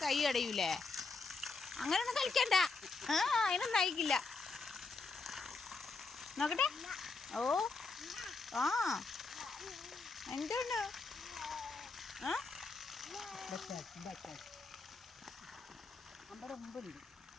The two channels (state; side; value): quieter; right; 4.1 dB